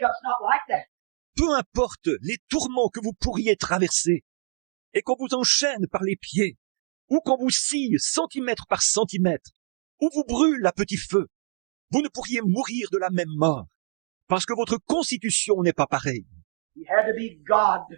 not like that. Peu importe les tourments que vous pourriez traverser, et qu'on vous enchaîne par les pieds, ou qu'on vous scie centimètre par centimètre, ou vous brûle à petit feu, vous ne pourriez mourir de la même mort, parce que votre constitution n'est pas pareille. He had to be God.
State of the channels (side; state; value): left; silent; digital silence